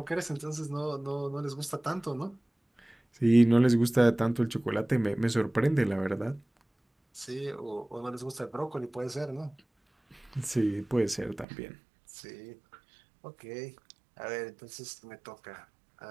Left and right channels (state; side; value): drops out; left; at 11.5 s